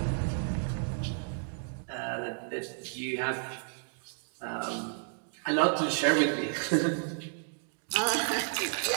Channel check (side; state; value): left; silent; digital silence